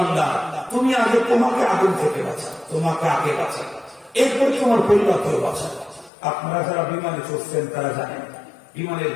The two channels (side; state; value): right; drops out; at 6.1 s